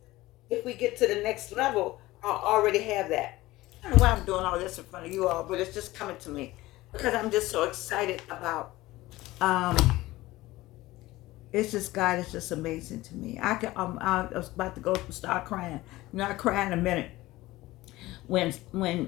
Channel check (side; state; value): right; quieter; 18.2 dB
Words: if we get to the next level, I'll already have that. I don't know why I'm doing all this in front of you all, but it's just coming to me because I'm just so excited about. Um, it's just God is just amazing to me. I was about to go start crying. Not crying in a minute. When